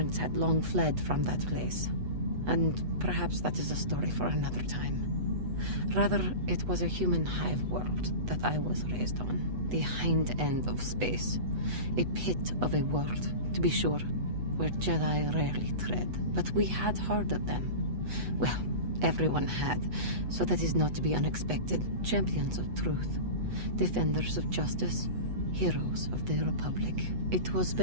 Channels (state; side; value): late; left; 8.1 ms